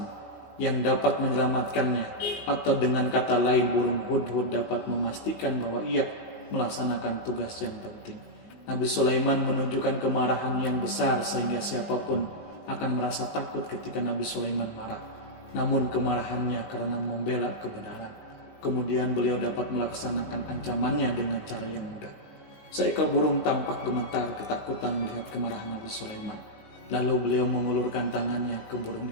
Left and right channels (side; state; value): right; late; 19 ms